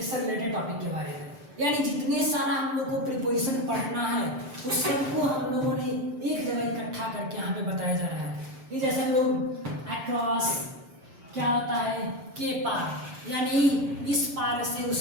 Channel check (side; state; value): left; late; 6.7 ms